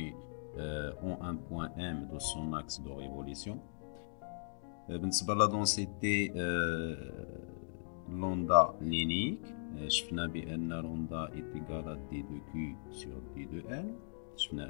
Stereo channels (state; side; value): silent; right; digital silence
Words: en un point M de son axe de révolution. بالنسبة لا densité lambda linéique, شفنا بأن lambda est égal à d2q sur d2l.